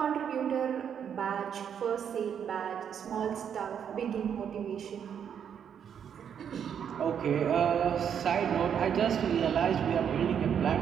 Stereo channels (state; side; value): quieter; left; 8.2 dB